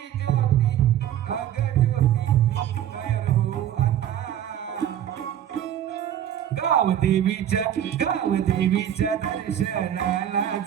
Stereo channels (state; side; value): quieter; left; 10.7 dB